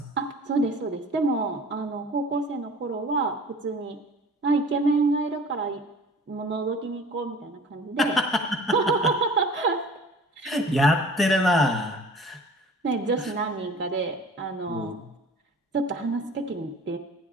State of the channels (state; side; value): normal; both; correlation 0.45